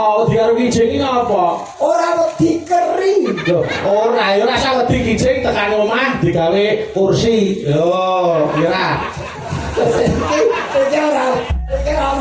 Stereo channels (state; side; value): identical; both; correlation 1.00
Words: Wedi karo kijing iki ngopo? Ora wedi keri. Loh, ora ya ora usah wedi kijing tekan omah digawe kursi. Yo, kira. Iki ora